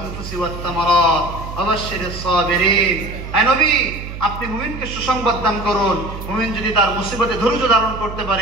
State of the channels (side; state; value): right; noise; hum, 10 dB below the sound